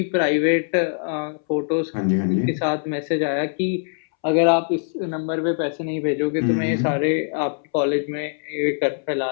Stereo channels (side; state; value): right; silent; 64 dB below the other